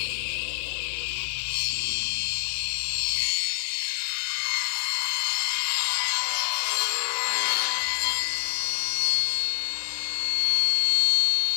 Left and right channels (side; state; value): right; silent; digital silence